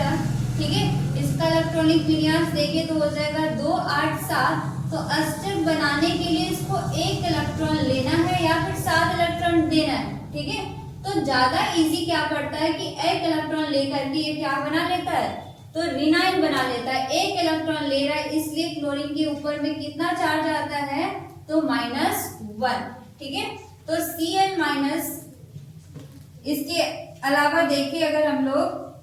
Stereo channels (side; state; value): both; identical; correlation 1.00